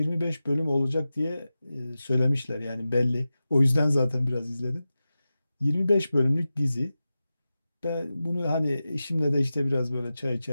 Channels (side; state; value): both; inverted; correlation -0.94